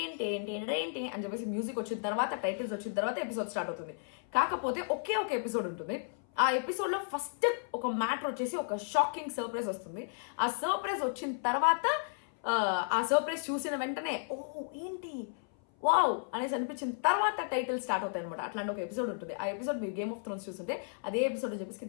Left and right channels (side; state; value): right; silent; 55 dB below the other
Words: అని చెప్పేసి మ్యూజిక్ వచ్చిన తర్వాత టైటిల్స్ వచ్చిన తర్వాత ఎపిసోడ్ స్టార్ట్ అవుతుంది. కాకపోతే ఒకే ఒక ఎపిసోడ్ ఉంటుంది. ఆ ఎపిసోడ్ లో ఫస్ట్ ఒక మ్యాటర్ వచ్చేసి ఒక షాకింగ్ సర్ప్రైజ్ వస్తుంది. ఆ సర్ప్రైజ్ వచ్చిన తర్వాత ఆ సర్ప్రైజ్ చూసిన వెంటనే ఓ ఏంటి వావ్ అనేసి అనిపించిన తర్వాత టైటిల్ స్టార్ట్ అవుతాయి అనమాట. అట్లాంటి ఒక ఎపిసోడ్ ఉంటుంది. ఆ ఎపిసోడ్ మీరు గేమ్ ఆఫ్ థ్రోన్స్ చూస్తుంటే అదే ఎపిసోడ్ చెప్పేసి